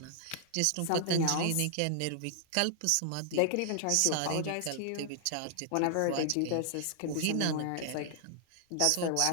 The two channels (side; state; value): both; different; correlation 0.00